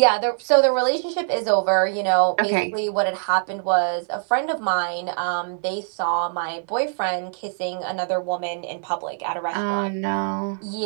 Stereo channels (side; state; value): left; silent; 63 dB below the other